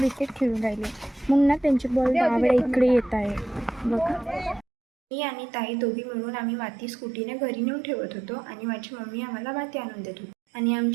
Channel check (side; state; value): left; drops out; at 4.7 s